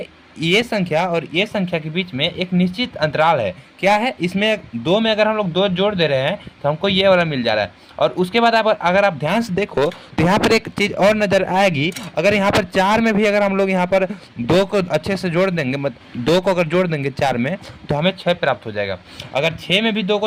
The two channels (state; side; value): identical; both; correlation 1.00